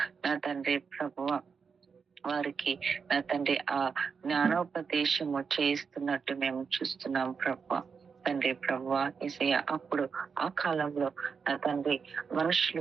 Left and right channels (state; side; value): quieter; left; 5.8 dB